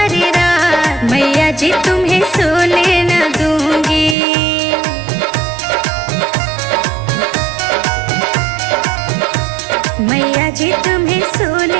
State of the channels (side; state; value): left; drops out; at 4.2 s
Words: रात, मैया जी तुम्हें सोने न दूंगी। मैया जी तुम्हें